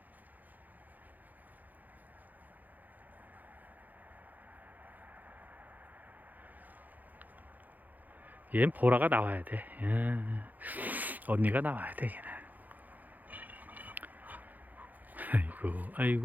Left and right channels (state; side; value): late; left; 0.082 ms